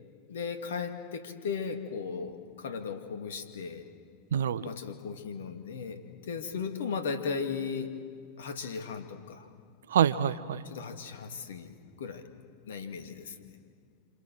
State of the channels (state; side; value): inverted; both; correlation -0.49